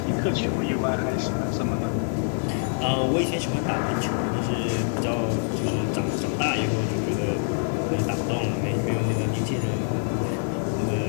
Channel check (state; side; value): silent; right; digital silence